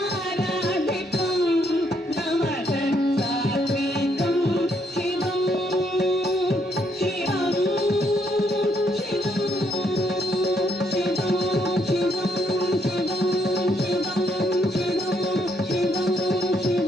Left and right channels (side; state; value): both; normal; correlation 0.74